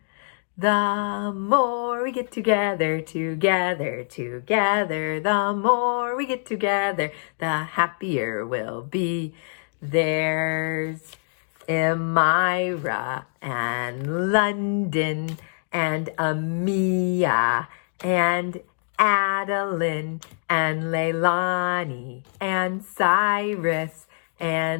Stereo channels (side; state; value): right; silent; digital silence